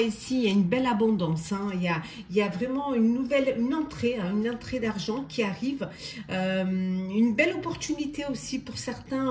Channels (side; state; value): both; identical; correlation 1.00